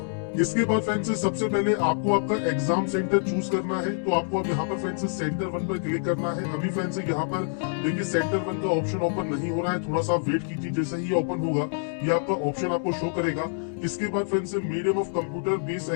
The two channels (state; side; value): silent; right; digital silence